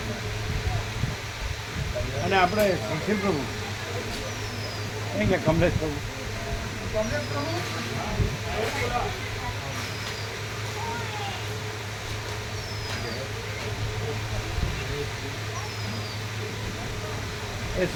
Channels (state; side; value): identical; both; correlation 1.00